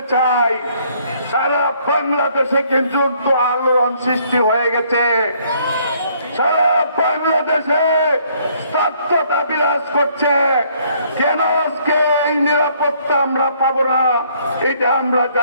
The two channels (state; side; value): inverted; both; correlation -0.65